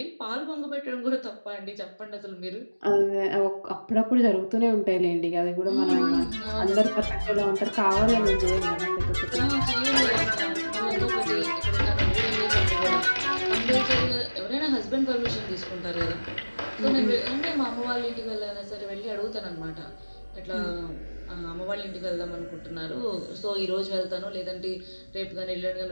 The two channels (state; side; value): inverted; both; correlation -1.00